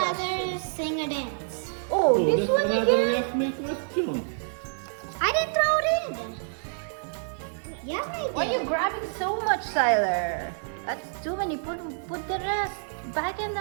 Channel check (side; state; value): left; silent; digital silence